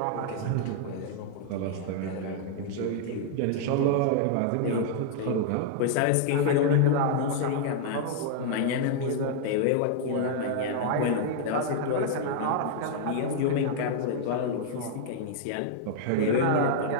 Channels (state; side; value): different; both; correlation -0.01